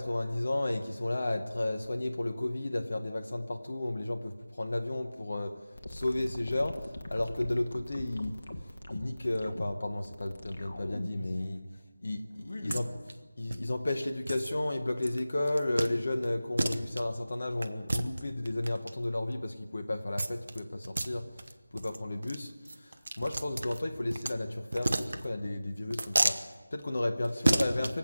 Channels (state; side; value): inverted; both; correlation -0.96